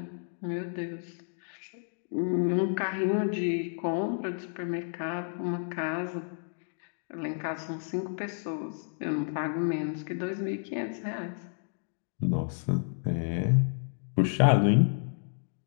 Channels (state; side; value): silent; right; digital silence